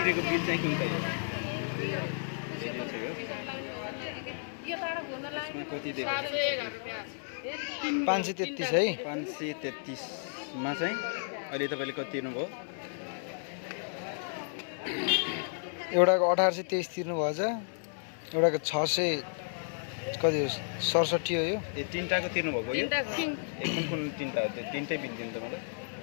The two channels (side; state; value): right; silent; 56 dB below the other